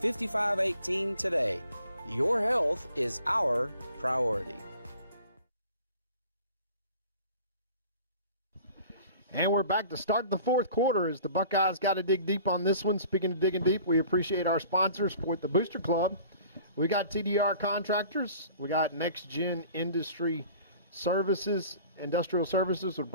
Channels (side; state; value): both; inverted; correlation -0.48